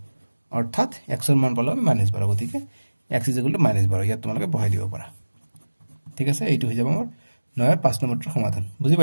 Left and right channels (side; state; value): both; inverted; correlation -1.00